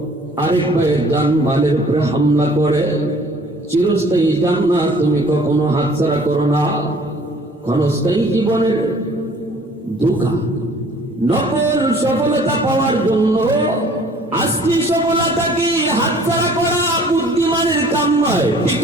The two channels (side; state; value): both; normal; correlation 0.53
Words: আরেক ভাইয়ের জান মালের উপরে হামলা করে। চিরস্থায়ী জান্নাত তুমি কখনো হাতছাড়া করো না। ক্ষণস্থায়ী জীবনের ধোঁকা, নকল সফলতা পাওয়ার জন্য আসলি সফলতাকে হাতছাড়া করা বুদ্ধিমানের কাম নয়, ঠিক